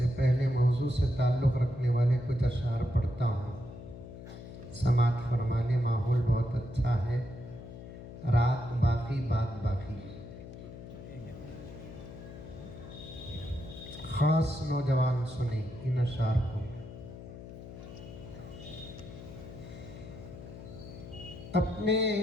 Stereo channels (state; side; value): noise; left; hum, 13 dB below the sound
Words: पहले मौजू से ताल्लुक़ रखने वाले कुछ अशार पढ़ता हूँ। समात फरमाने, माहौल बहुत अच्छा है, रात बाकी बात बाकी। खास नौजवान सुने इन अशार को। अपने